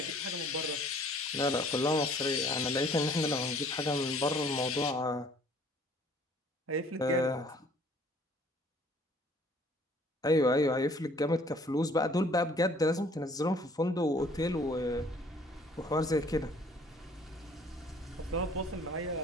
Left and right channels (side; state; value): both; normal; correlation 0.56